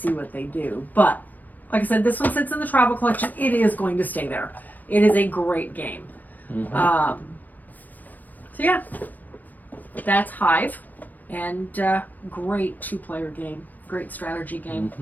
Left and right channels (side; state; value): right; late; 0.086 ms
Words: what they do. But like I said, this one sits in the travel collection. It is going to stay there. It is a great game. So yeah, that's Hive, and great 2-player game, great strategy game.